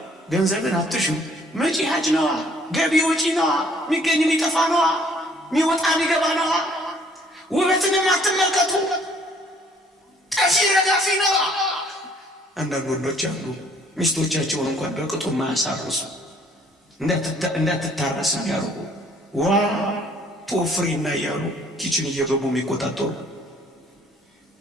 ገንዘብን አትሹ፣ መጪ ሀጅ ነዋ፣ ገቢ ወጪ ነዋ፣ የሚገኝ የሚጠፋ ነዋ፣ የሚወጣ የሚገባ ነዋ። ውበትንም አትመልከቱ፣ ጠፊ ረጋፊ ነዋ። አንዳንድ ወንዶች አሉ ሚስቶቻቸውን እንኳን በቅጡ ማያሳርሱ እንዳትታረስ ያርጉ ዋ ቶፍሪና እያሉ ኪችን እየገቡ የሚቆጣጠሩ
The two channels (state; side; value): normal; both; correlation 0.60